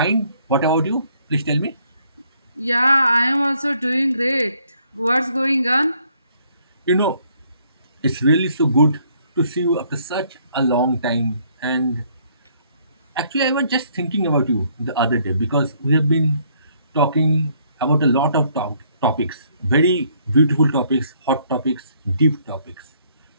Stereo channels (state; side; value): inverted; both; correlation -0.67